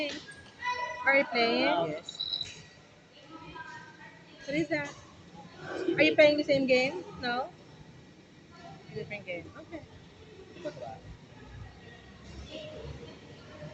Are you playing? Yes. What is that? Are you playing the same game? No? A different game. Okay.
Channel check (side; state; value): both; identical; correlation 1.00